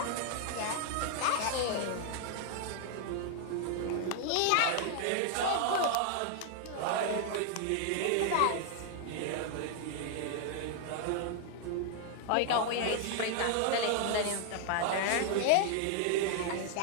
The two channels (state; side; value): different; both; correlation 0.00